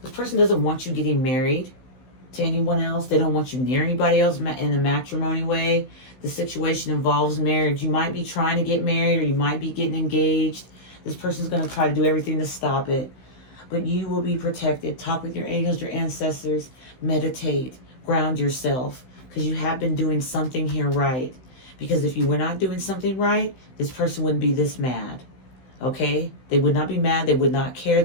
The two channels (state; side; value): late; right; 16 ms